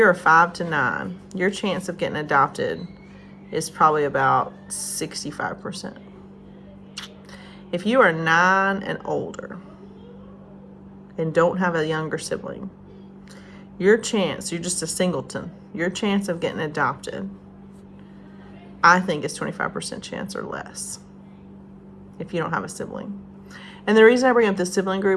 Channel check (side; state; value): both; identical; correlation 1.00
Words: a 5 to 9, your chance of getting adopted is probably about 65%. If you are 9 and older and don't have a younger sibling, you're just a singleton, your chance of getting adopted, I think, is 25% chance or less if you don't have a sibling. And the reason I bring up the sibling